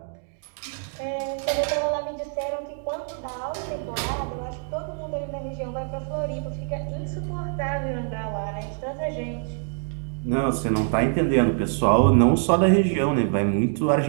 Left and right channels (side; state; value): left; silent; digital silence